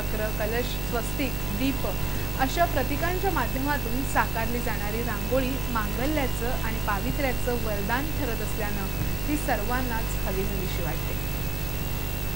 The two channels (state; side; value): noise; right; hum, 6 dB below the sound